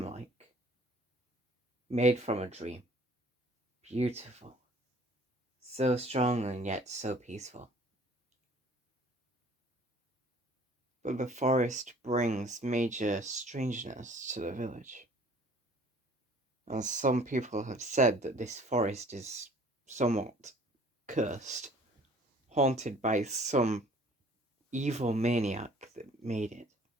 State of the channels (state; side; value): normal; both; correlation 0.52